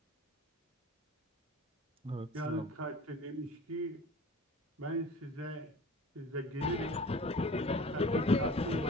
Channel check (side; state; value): both; normal; correlation 0.42